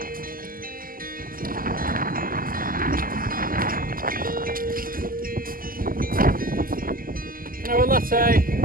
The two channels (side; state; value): left; late; 0.42 ms